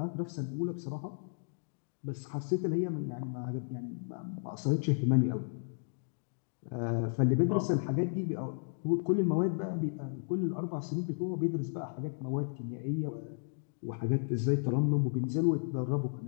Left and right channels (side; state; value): right; silent; digital silence